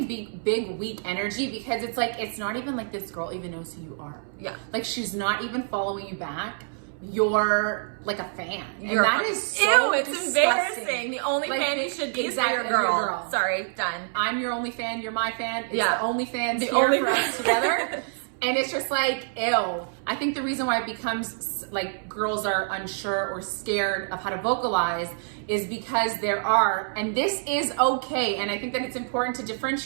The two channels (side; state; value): left; silent; 60 dB below the other